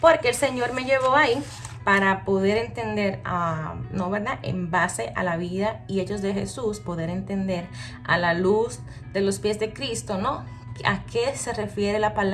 el Señor me llevó ahí para poder entender, ¿no, verdad? En base a la vida y hechos de Jesús, poder entender a la luz de los pies de Cristo, ¿no? ¿A qué se refiere la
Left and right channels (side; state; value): both; identical; correlation 1.00